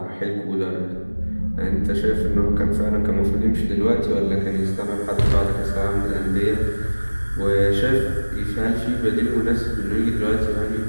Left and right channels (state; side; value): inverted; both; correlation -1.00